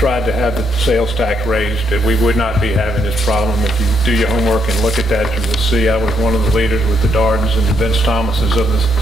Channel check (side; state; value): right; noise; rumble, 19 dB below the sound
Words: have the sales tax raised. We would not be having this problem. If you do your homework and look at that, you will see I was one of the leaders with the Dardens and the Vince Thomases